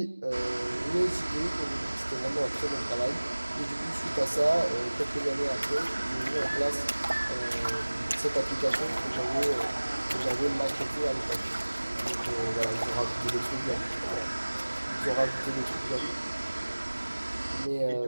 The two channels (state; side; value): inverted; both; correlation -1.00